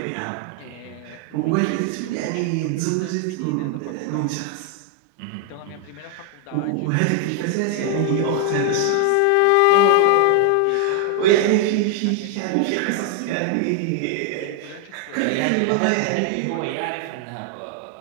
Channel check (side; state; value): both; different; correlation 0.00